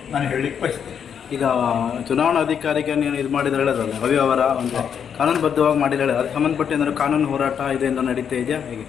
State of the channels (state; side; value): quieter; right; 7.8 dB